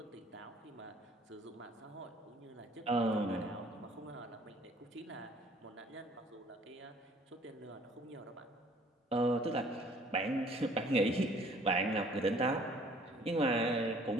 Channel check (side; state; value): both; normal; correlation 0.56